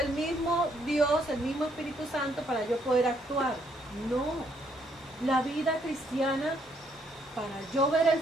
mismo Dios, el mismo Espíritu Santo para yo poder actuar. No. La vida cristiana, para yo ver el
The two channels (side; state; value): both; normal; correlation 0.70